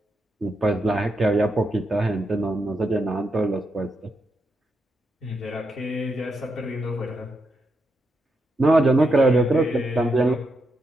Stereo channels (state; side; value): normal; both; correlation 0.83